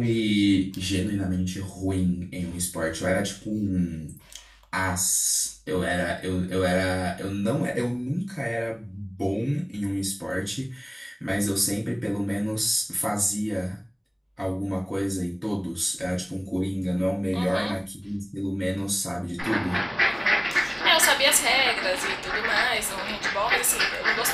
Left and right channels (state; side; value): identical; both; correlation 1.00